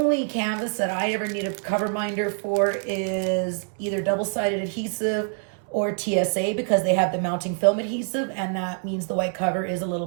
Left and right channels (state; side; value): silent; left; 56 dB below the other